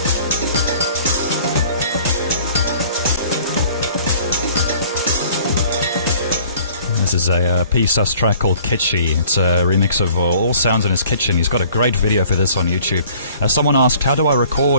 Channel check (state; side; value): inverted; both; correlation -0.53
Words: This is a P-Sus track called Kitschy. It's a remix of All Sounds in His Kitchen. He's got a great video for this on YouTube. Someone asked, how do I